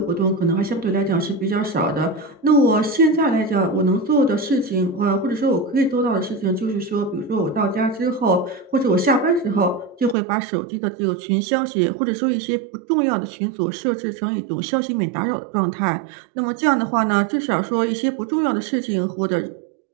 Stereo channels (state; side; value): drops out; left; at 10.2 s